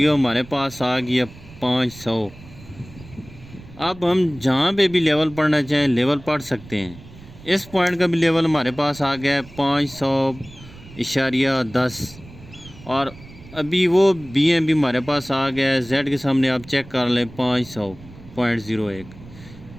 हमारे पास आ गई है 500। अब हम जहाँ पे भी लेवल पढ़ना चाहें लेवल पढ़ सकते हैं। इस पॉइंट का भी लेवल हमारे पास आ गया है 500.10, और अभी वो बीएम भी हमारे पास आ गया है। जेड के सामने आप चेक कर लें 500.01।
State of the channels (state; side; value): noise; right; rumble, 19 dB below the sound